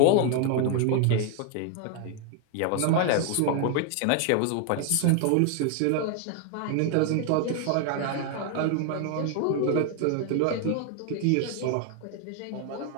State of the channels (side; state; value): both; different; correlation 0.00